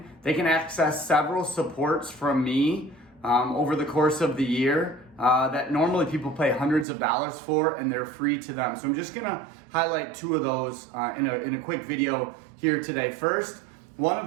they can access several supports from me over the course of the year that normally people pay hundreds of dollars for, and they're free to them. So I'm just gonna highlight two of those in a quick video here today. First, one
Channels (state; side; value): drops out; left; at 6.9 s